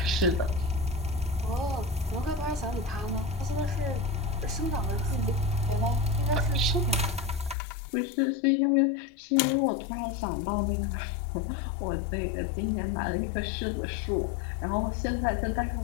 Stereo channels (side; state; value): right; drops out; at 7.6 s